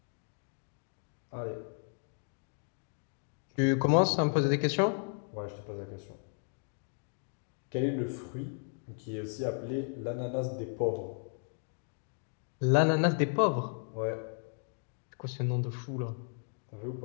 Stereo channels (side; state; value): right; silent; 55 dB below the other